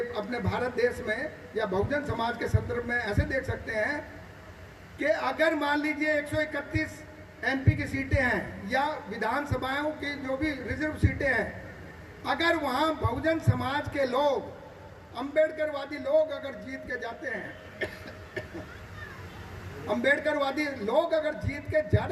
अपने भारत देश में या बहुजन समाज के संदर्भ में ऐसे देख सकते हैं कि अगर मान लीजिए 131 एमपी की सीटें हैं या विधानसभाओं की जो भी रिजर्व सीटें हैं, अगर वहाँ बहुजन समाज के लोग, अम्बेडकरवादी लोग अगर जीत के जाते हैं अम्बेडकरवादी लोग अगर जीत के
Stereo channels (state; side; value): identical; both; correlation 1.00